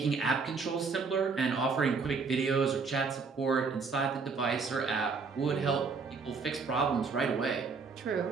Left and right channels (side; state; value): left; quieter; 4.8 dB